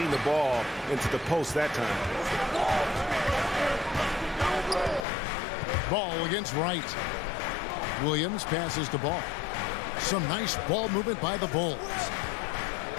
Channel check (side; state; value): right; drops out; at 5.1 s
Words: the ball into the post that time. Ball against Wright. Williams passes the ball. Some nice ball movement by the Bulls.